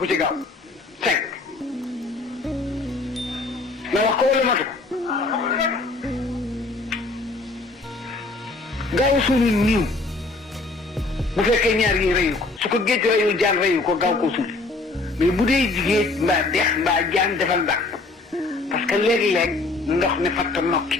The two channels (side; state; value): right; quieter; 3.4 dB